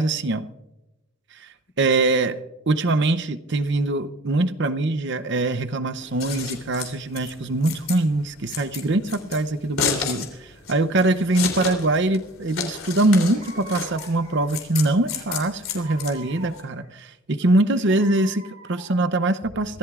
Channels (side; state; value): both; normal; correlation 0.47